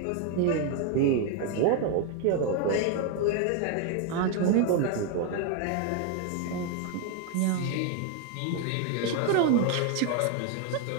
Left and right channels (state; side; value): different; both; correlation 0.01